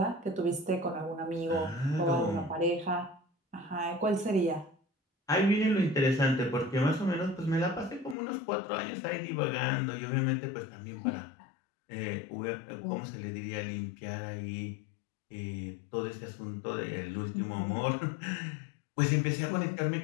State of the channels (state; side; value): drops out; right; at 8.2 s